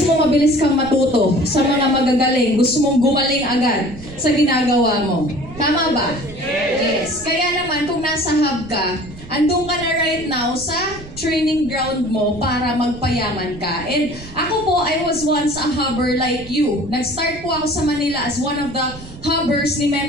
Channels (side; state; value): right; noise; rumble, 16 dB below the sound